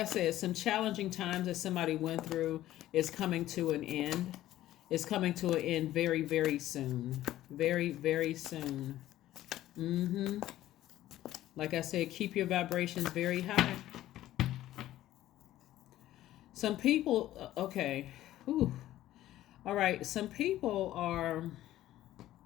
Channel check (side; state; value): right; quieter; 14.1 dB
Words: said, some challenging times that somebody went through is coming to an end. It's coming to an end very, very soon. Very, very soon. Like I said, keep your vibrations very high. Some people, okay. Whew. All right. Some people are,